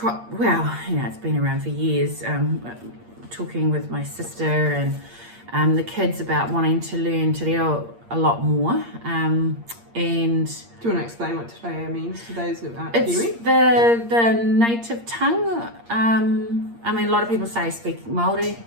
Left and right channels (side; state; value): left; late; 8.6 ms